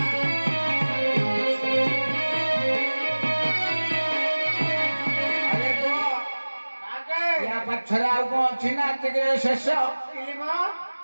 पछरे आउ कौन अच्छी ना शेष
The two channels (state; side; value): inverted; both; correlation -1.00